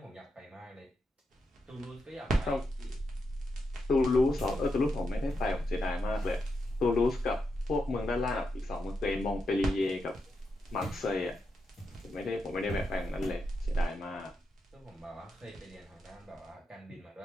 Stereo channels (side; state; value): both; normal; correlation 0.85